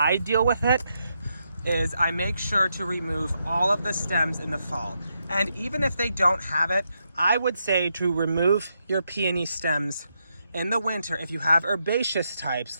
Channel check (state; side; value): inverted; both; correlation -0.81